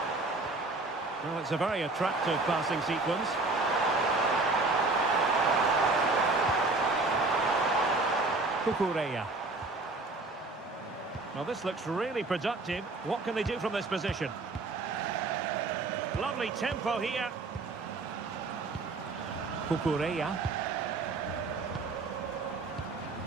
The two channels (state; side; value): quieter; left; 3.4 dB